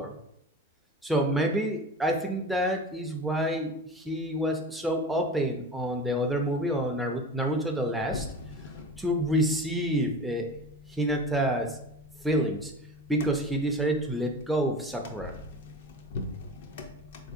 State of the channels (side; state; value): both; normal; correlation 0.34